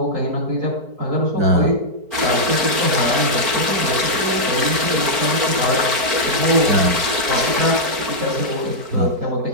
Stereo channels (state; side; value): late; left; 4.6 ms